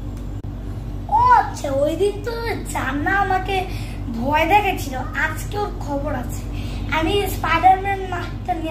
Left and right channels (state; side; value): identical; both; correlation 1.00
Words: ও আচ্ছা, ওই দিন তো জান্না আমাকে ভয় দেখেছিল, আজকে ওর খবর আছে। আমি স্পাইডারম্যান মাস্কটা